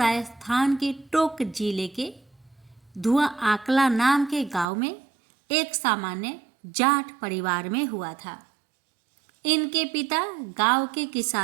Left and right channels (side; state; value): left; drops out; at 4.7 s